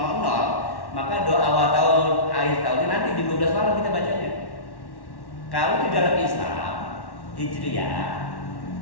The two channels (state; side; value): late; right; 1.1 ms